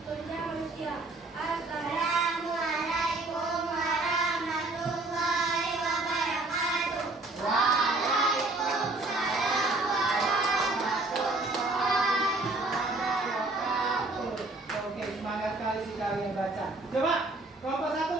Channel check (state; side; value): quieter; left; 3.1 dB